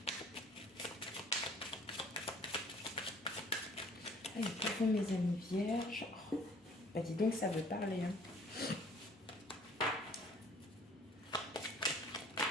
Allez, pour vous, mes amis vierges. Oh, bah dis donc, ça veut parler. Hein.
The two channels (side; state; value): both; normal; correlation 0.54